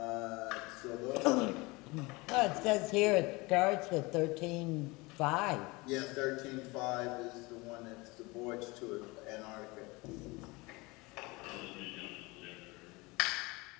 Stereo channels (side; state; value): right; quieter; 24.3 dB